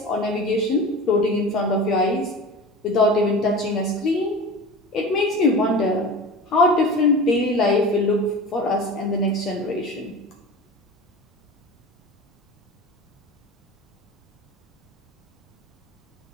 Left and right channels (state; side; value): normal; both; correlation 0.33